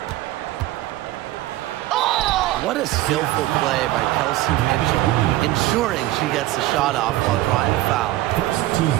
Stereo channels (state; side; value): quieter; left; 16.3 dB